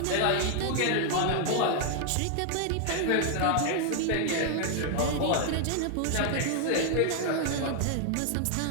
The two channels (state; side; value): different; both; correlation 0.00